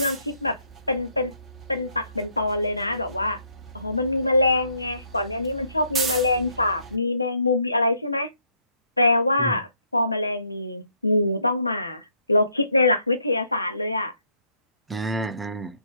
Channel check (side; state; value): both; inverted; correlation -0.72